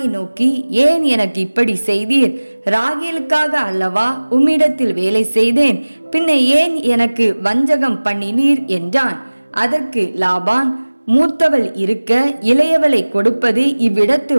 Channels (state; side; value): inverted; both; correlation -1.00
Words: நோக்கி, ஏன் எனக்கு இப்படி செய்தீர்? ராகேலுக்காக அல்லவா உம்மிடத்தில் வேலை செய்தேன், பின்ன ஏன் எனக்கு வஞ்சகம் பண்ணினீர் என்றான். அதற்கு லாபான், மூத்தவள் இருக்க இளையவளை கொடுப்பது இவ்விடத்து